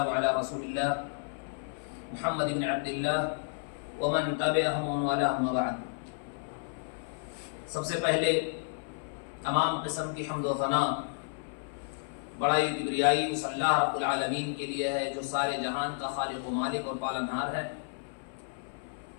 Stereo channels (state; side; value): silent; right; 57 dB below the other